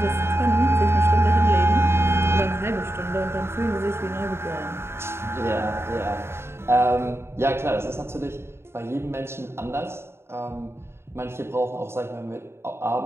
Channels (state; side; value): late; left; 0.12 ms